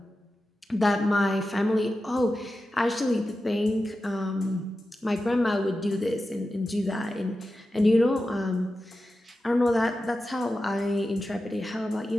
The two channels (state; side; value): normal; both; correlation 0.92